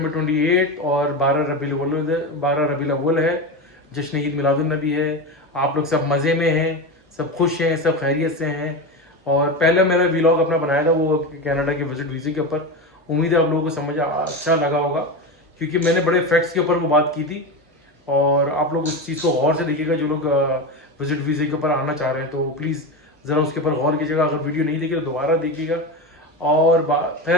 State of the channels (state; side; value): normal; both; correlation 0.20